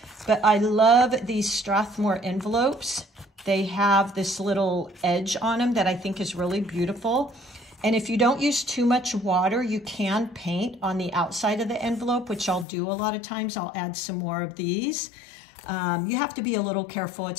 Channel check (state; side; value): drops out; right; at 12.7 s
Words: But I love these Strathmore envelopes. They have this little edge on them that I think is really beautiful. And if you don't use too much water, you can paint on the outside of the envelope, which I'll do a lot of times. I'll add some more of these. You have to be a little careful.